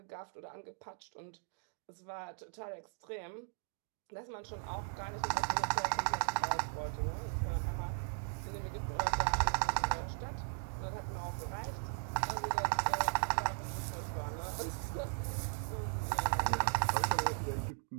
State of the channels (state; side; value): silent; left; 52 dB below the other